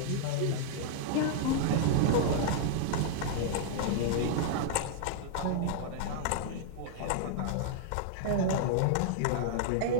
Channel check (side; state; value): both; different; correlation -0.01